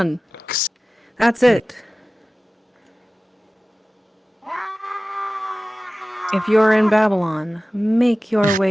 That's it. If you're in Babylon, make your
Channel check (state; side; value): normal; both; correlation 0.96